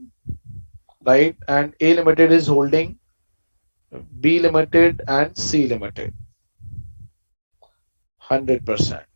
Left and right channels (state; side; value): inverted; both; correlation -1.00